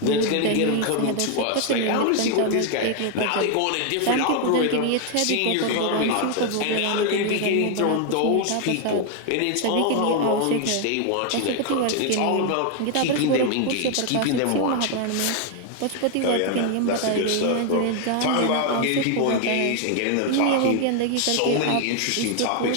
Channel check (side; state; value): both; different; correlation 0.01